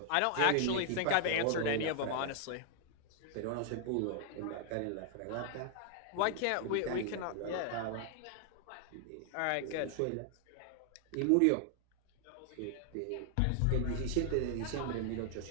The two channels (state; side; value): different; both; correlation 0.00